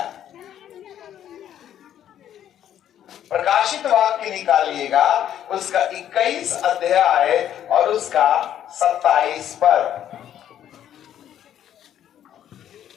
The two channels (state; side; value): quieter; right; 10.6 dB